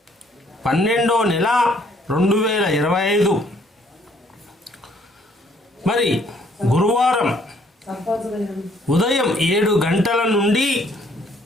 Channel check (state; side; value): normal; both; correlation 0.64